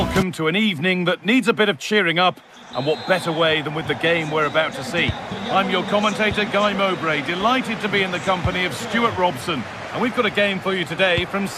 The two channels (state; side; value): identical; both; correlation 1.00